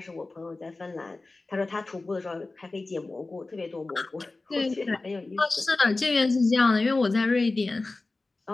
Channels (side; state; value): right; quieter; 3.3 dB